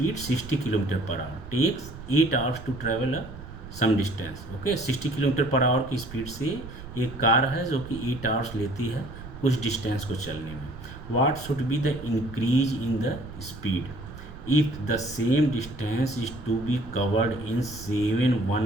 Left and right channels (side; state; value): right; noise; rumble, 14 dB below the sound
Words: 60 km per hour takes 8 hours to travel some distance. Okay, 60 kilometre per hour की speed से एक car है जो कि 8 hours लेती है कुछ distance को चलने में. What should be the increase in the speed if the same distance is to be covered in